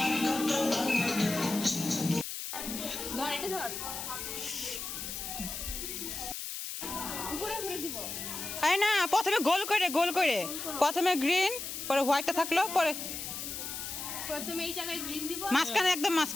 এই না, প্রথমে গোল করে, গোল করে, প্রথমে গ্রিন, পরে হোয়াইটটা থাকলো, পরে প্রথমে এই জায়গায় গ্রিন দিব, মাঝখানে, একদম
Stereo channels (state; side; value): noise; left; hiss, 6 dB below the sound